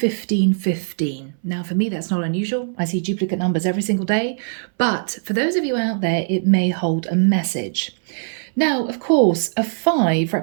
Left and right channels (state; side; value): silent; left; 62 dB below the other